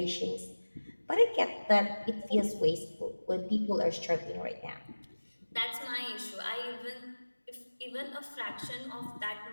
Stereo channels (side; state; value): both; inverted; correlation -1.00